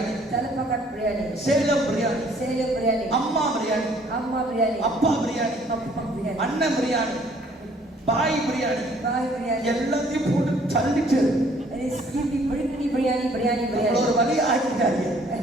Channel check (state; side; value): normal; both; correlation 0.60